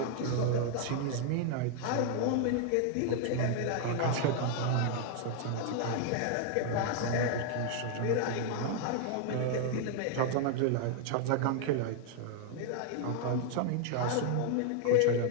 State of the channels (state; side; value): different; both; correlation 0.00